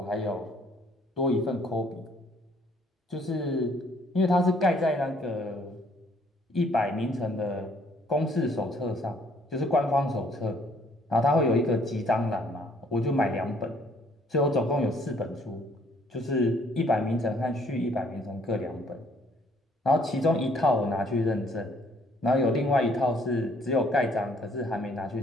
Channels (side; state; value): both; normal; correlation 0.63